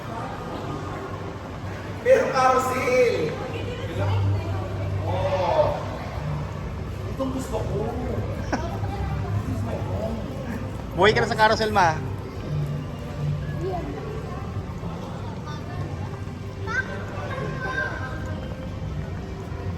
Pero carousel! Oh! Itong gusto ko. Buhay ka na sa carousel, ma.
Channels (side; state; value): both; identical; correlation 1.00